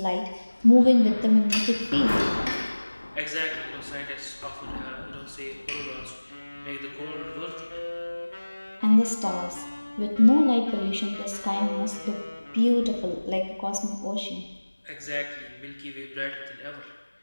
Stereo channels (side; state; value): both; inverted; correlation -1.00